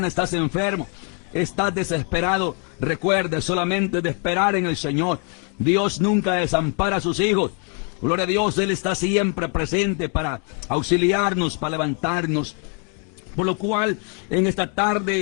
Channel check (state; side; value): quieter; right; 39.4 dB